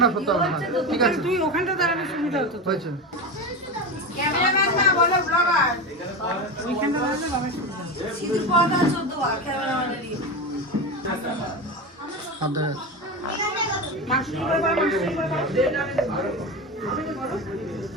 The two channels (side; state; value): both; normal; correlation 0.21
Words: না সত্য না, ঠিক আছে তুই ওখানটা দাঁড়ালে সুবিধা হতো। হয়েছে। ক্যামেরাম্যান না বলো ব্লগার, ওইখানটা দাঁড়ালে বাবা সুবিধা। সিধু পড়া 14 বার ক্যামেরাম্যানেরই আদর মাসি করে বলো, মাসি করে বলো।